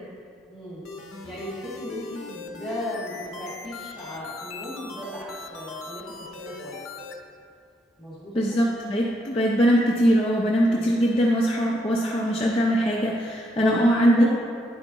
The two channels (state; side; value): normal; both; correlation 0.77